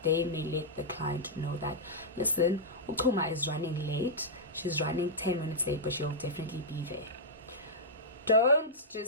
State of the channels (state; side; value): normal; both; correlation -0.10